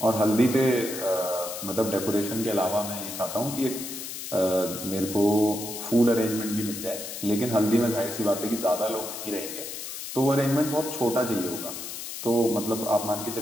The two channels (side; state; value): left; noise; hiss, 8 dB below the sound